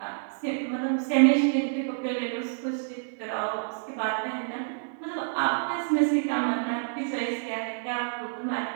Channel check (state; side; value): silent; left; digital silence